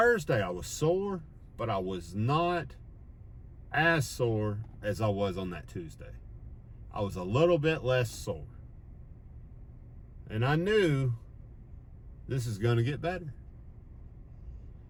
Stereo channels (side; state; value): both; identical; correlation 1.00